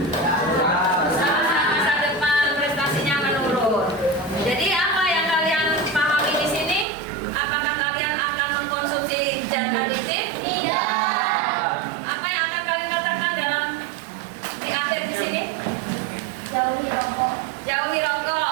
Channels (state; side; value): drops out; left; at 6.9 s